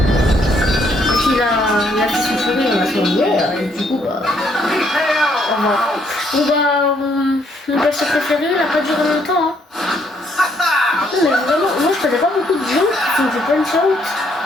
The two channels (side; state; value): both; normal; correlation 0.70